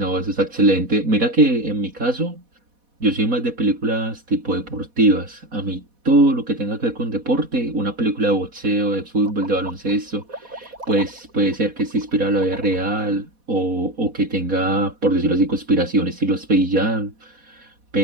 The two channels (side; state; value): left; late; 4.1 ms